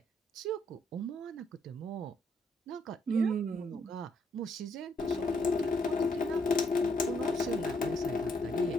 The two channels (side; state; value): both; normal; correlation 0.73